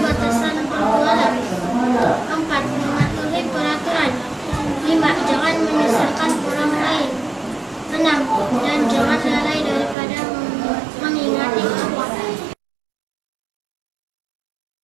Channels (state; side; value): drops out; left; at 10.0 s